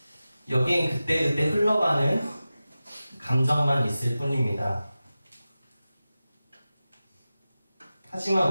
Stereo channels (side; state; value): both; inverted; correlation -0.95